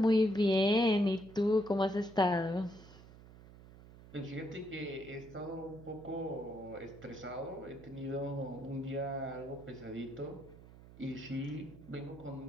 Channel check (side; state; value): right; noise; hum, 19 dB below the sound